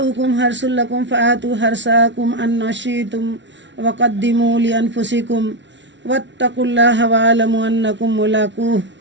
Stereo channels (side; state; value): left; late; 0.53 ms